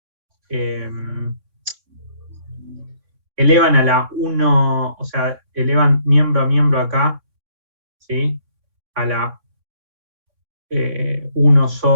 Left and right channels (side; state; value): left; late; 3.6 ms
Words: elevan a la 1, o sea, elevan miembro a miembro acá, ¿sí? A la 1